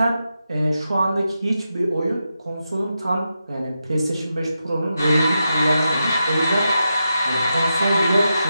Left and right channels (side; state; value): both; inverted; correlation -0.87